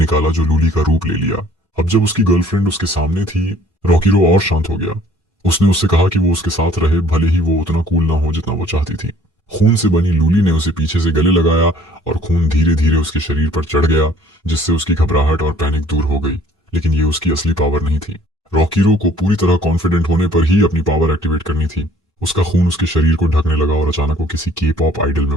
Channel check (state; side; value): normal; both; correlation 0.56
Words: जो लूली का रूप ले लिया। अब जब उसकी गर्लफ्रेंड उसके सामने थी, रॉकीरो और शांत हो गया। उसने उससे कहा कि वो उसके साथ रहे, भले ही वो उतना कूल ना हो जितना वो चाहती थी। खून से बनी लूली ने उसे पीछे से गले लगाया और खून धीरे धीरे उसके शरीर पर चढ़ गया, जिससे उसकी घबराहट और पैनिक दूर हो गई। लेकिन ये उसकी असली पावर नहीं थी। रॉकीरो को पूरी तरह कॉन्फिडेंट होने पर ही अपनी पावर एक्टिवेट करनी थी। उसका खून उसके शरीर को ढकने लगा और अचानक वो किसी के पॉप आइडल